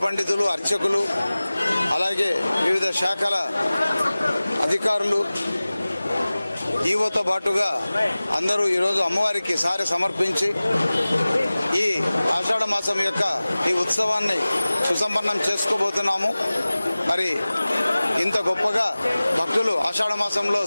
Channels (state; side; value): inverted; both; correlation -0.98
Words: పండితులు, అర్చకులు, అలాగే వివిధ శాఖల అధికారులు, ఈవోతో పాటుగా అందరూ ఈరోజు అమ్మవారికి సారె సమర్పించి ఈ ఆషాఢ మాసం యొక్క ఈ ఉత్సవాన్ని సుసంపన్నం చేసుకోబోతున్నాము. మరి ఇంత గొప్పగా భక్తులు ఆషాఢ మాసంలో